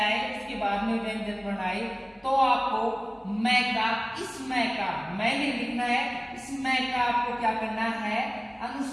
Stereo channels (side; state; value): both; identical; correlation 1.00